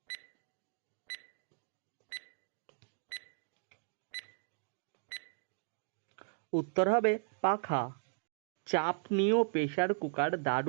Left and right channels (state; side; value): silent; left; digital silence